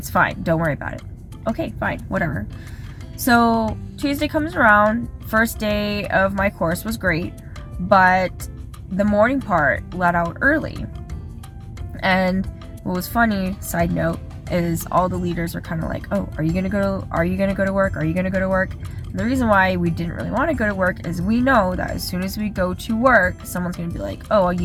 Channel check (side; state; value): both; identical; correlation 1.00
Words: fine. Don't worry about it. Okay, fine, whatever. So Tuesday comes around. First day of my course was great, but the morning part let out early. And what was funny, side note, is all the leaders were kind of like, oh, are you gonna go to work? Are you gonna go to work? And the reason why we didn't really want to go to work is we know that as soon as we go to work, someone's gonna be like, oh,